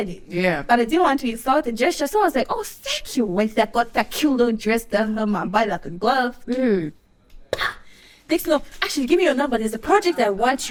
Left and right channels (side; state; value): both; identical; correlation 1.00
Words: it. Yeah. But I didn't want to insult the gesture, so I was like, oh, thank you. When I got that cute little dress done on my body like a glove. Next, actually, give me your number. There's a project I want